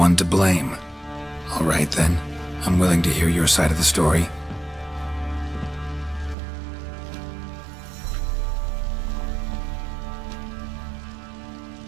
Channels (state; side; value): drops out; left; at 6.4 s